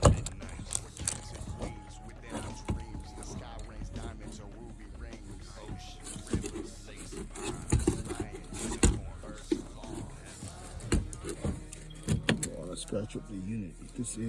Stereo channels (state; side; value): identical; both; correlation 1.00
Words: Scratch up the unit with this